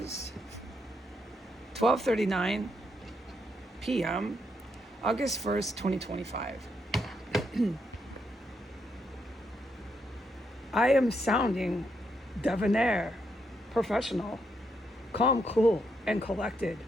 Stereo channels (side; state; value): both; normal; correlation 0.78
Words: 12:39 p.m., August 1st, 2025. I am sounding debonair, professional, calm, cool, and collected,